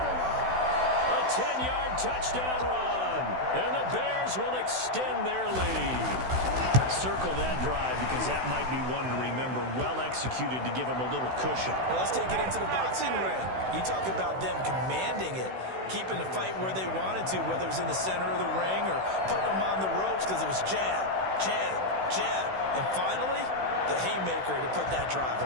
A 10-yard touchdown run. And the Bears will extend their lead. Circle that drive because that might be one to remember. Well executed to give them a little cushion. Well, let's take it into the boxing ring. You talk about them commanding it, keeping the fight where they wanted to, whether it was in the center of the ring or putting them on the ropes because it was jab, jab, jab. And finally, the haymaker to put that drive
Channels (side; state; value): left; late; 16 ms